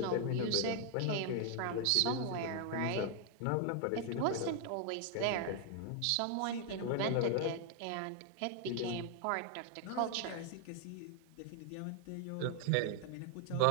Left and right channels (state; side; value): different; both; correlation 0.00